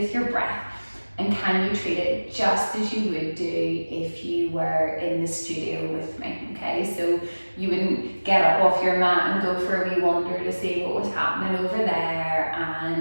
your breath? And can you treat it just as you would do if you were in the studio with me? Okay, so you wouldn't get up off your mat and go for a wee wander to see what was happening over there,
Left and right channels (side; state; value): both; inverted; correlation -1.00